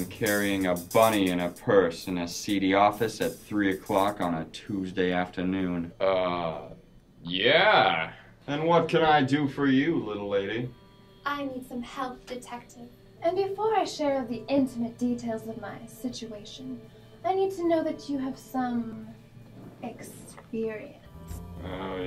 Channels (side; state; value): both; identical; correlation 1.00